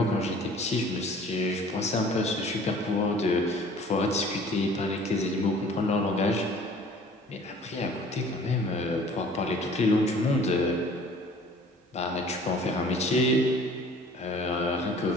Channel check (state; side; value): normal; both; correlation 0.50